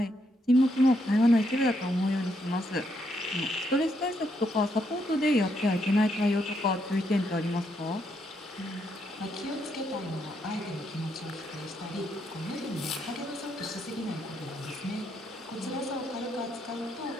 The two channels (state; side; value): normal; both; correlation 0.77